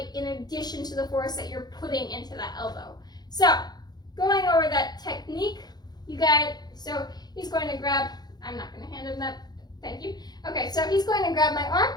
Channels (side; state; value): right; late; 0.20 ms